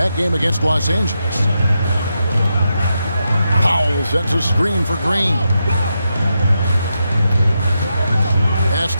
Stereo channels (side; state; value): both; inverted; correlation -0.86